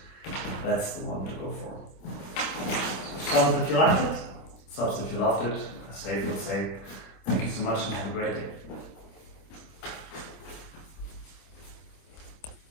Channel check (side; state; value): right; late; 26 ms